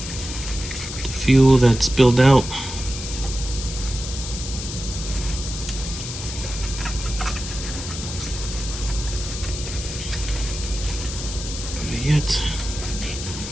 the fuel that's spilled out. Yet,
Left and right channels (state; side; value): noise; left; hiss, 8 dB below the sound